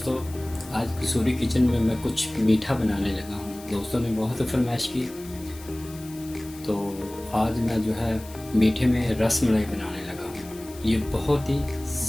आज कसूरी किचन में मैं कुछ मीठा बनाने लगा हूँ। दोस्तों ने बहुत फरमाइश की, तो आज मैं जो है मीठे में रस मलाई बनाने लगा हूँ। ये बहुत ही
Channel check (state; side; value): noise; left; hiss, 19 dB below the sound